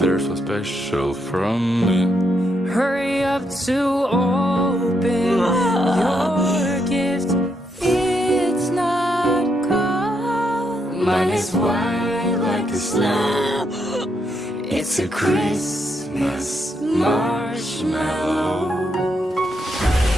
so special from me. hurry up to open your gift. It's not cold, mine is white like the snow. It's a Christmas marshmallow.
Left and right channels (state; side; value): normal; both; correlation 0.78